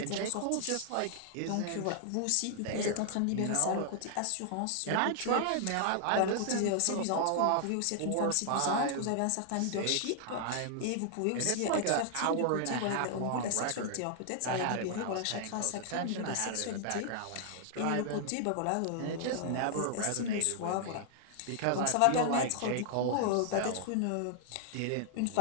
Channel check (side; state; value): both; different; correlation 0.00